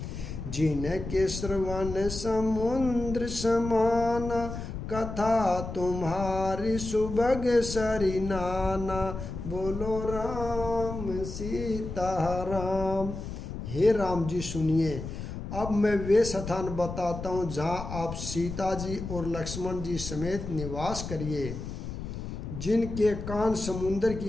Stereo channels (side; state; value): left; noise; rumble, 7 dB below the sound